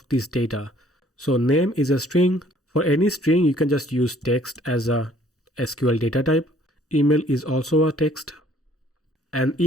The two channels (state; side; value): normal; both; correlation 0.59